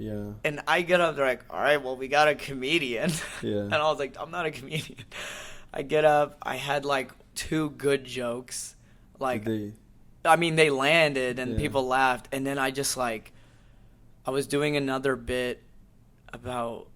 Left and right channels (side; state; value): both; identical; correlation 1.00